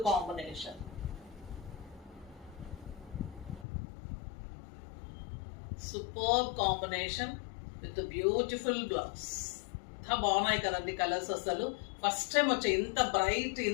combination. Superb combination with beautiful blouse. ఎంత బాగున్నాయి కదండి కలర్స్. అసలు ఫస్ట్ టైం వచ్చాయి ఇంత బ్రైట్,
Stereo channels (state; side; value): drops out; right; at 3.7 s